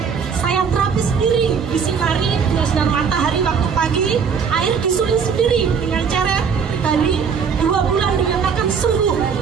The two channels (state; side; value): quieter; left; 6.4 dB